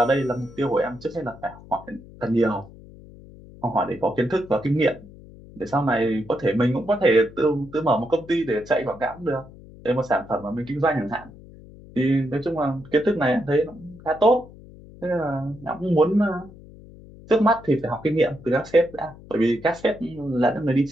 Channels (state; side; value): noise; left; hum, 20 dB below the sound